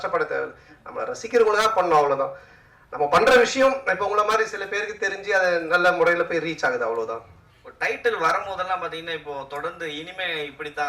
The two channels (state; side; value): identical; both; correlation 1.00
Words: தேவையில்லை. நம்ம ரசிக்கிறவங்களுக்காக பண்ணணும், அவ்வளவுதான். நம்ம பண்ற விஷயம் இப்ப உங்களை மாதிரி சில பேருக்கு தெரிஞ்சு அது நல்ல முறையில போய் ரீச் ஆகுது, அவ்வளவுதான். டைட்டில் வரும்போதெல்லாம் பாத்தீங்கன்னா இப்போ தொடர்ந்து இனிமே